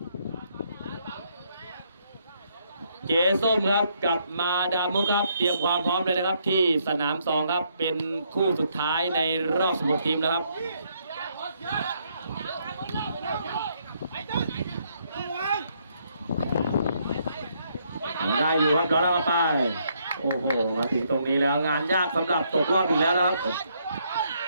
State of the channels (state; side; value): inverted; both; correlation -0.72